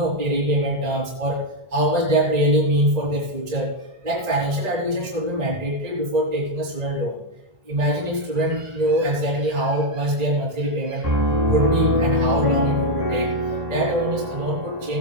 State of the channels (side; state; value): left; late; 1.5 ms